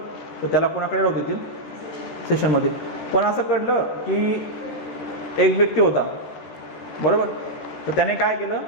तर त्याला कोणाकडे राहू देतील, सेशनमध्ये. पण असं कळलं की एक व्यक्ती होता, बरोबर, तर त्याने काय केलं,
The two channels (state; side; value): late; right; 13 ms